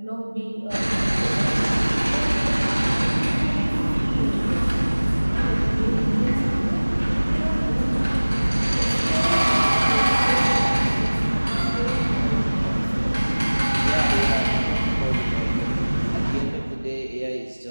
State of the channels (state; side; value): inverted; both; correlation -1.00